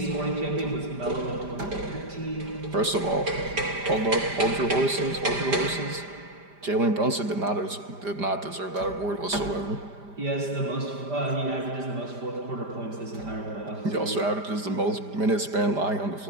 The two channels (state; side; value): late; left; 5.0 ms